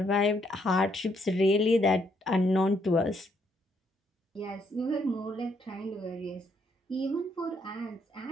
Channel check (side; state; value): both; normal; correlation 0.72